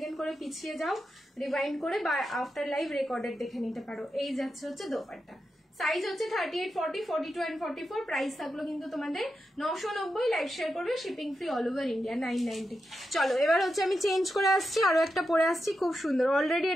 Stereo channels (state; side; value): normal; both; correlation 0.88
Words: করে পিছিয়ে যাও রিভাইন্ড করে, বা আফটার লাইভ রেকর্ডেড দেখে নিতে পারো। এই যাচ্ছে হচ্ছে দোপাট্টা, সাইজ হচ্ছে 38, 40, 42 অ্যান্ড 44, প্রাইস থাকলো কিন্তু তোমাদের 990। লাইভ শেয়ার করবে, shipping free all over India, 990। চলো এবার হচ্ছে আমি চেঞ্জ করে আসছি, আরো একটা পরে আসছি, খুব সুন্দর। অলরেডি